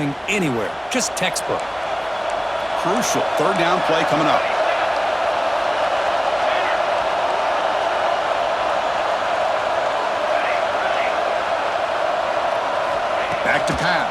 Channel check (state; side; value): identical; both; correlation 1.00